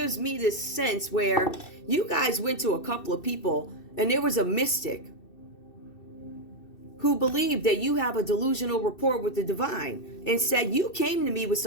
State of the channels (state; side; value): late; right; 2.7 ms